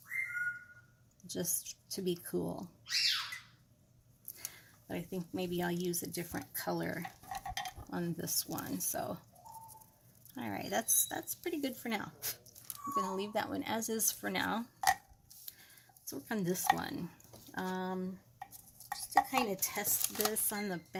just to be cool. But I think maybe I'll use a different color on this one. So, all right, that's pretty good for now. I'm going to leave that one as is for now. Let's work on this one. Just to kind of test this on the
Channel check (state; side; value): identical; both; correlation 1.00